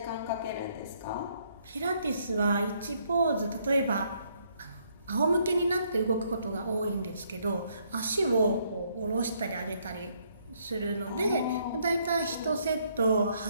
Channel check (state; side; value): inverted; both; correlation -0.70